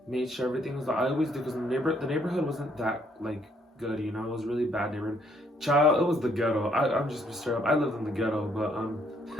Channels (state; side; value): normal; both; correlation 0.68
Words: made sure everything was. I always do because the neighborhood wasn't that like good, it was really bad neighborhood. Child, it was the ghetto. I'm just straight up. I lived in the ghetto, but